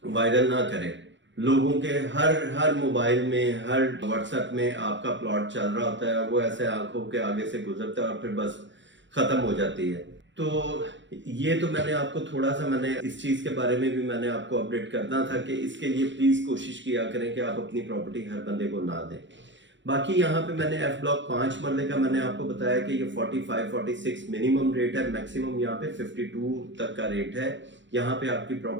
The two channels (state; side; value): late; left; 0.54 ms